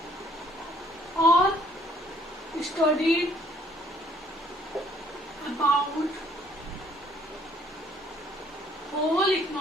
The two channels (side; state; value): both; normal; correlation 0.62